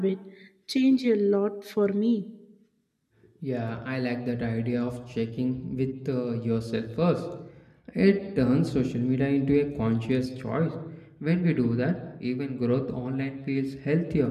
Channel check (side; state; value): both; identical; correlation 1.00